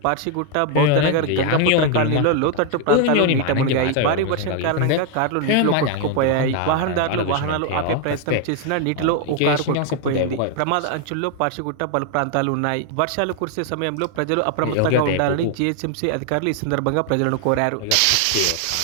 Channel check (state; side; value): different; both; correlation 0.01